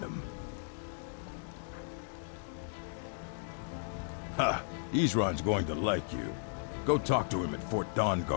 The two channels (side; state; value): right; silent; digital silence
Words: them. Ha! Isran's going to like you. Go talk to him at Fort